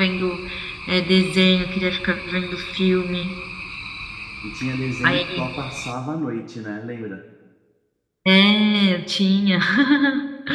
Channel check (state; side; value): identical; both; correlation 1.00